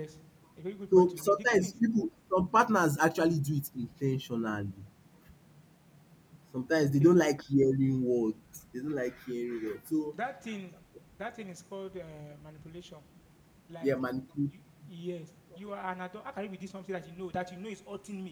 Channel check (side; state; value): both; identical; correlation 1.00